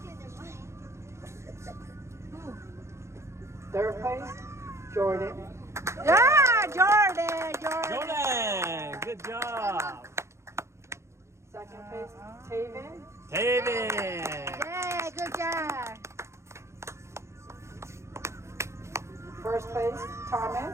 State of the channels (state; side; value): late; left; 0.13 ms